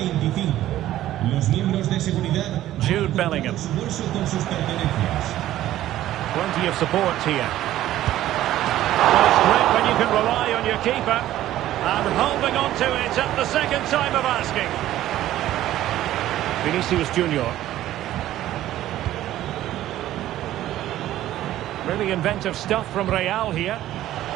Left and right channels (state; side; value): quieter; left; 13.7 dB